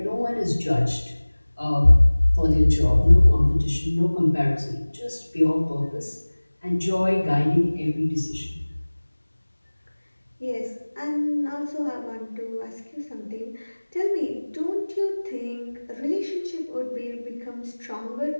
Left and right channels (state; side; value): inverted; both; correlation -1.00